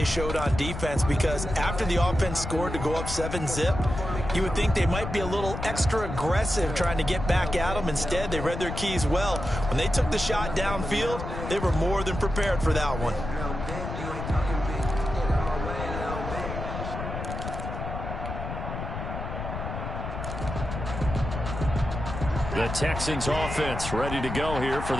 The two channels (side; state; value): left; noise; rumble, 6 dB below the sound